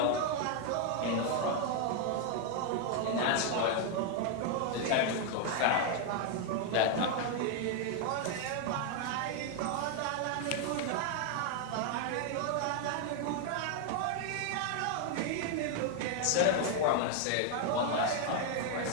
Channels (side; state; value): both; different; correlation 0.00